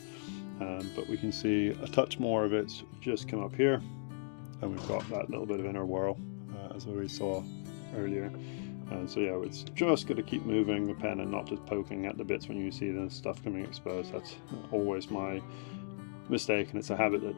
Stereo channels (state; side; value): silent; right; digital silence